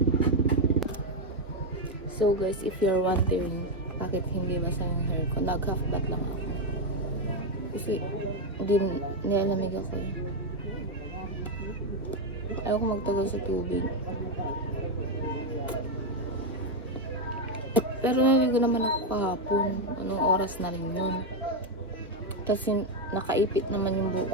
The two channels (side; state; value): both; normal; correlation 0.05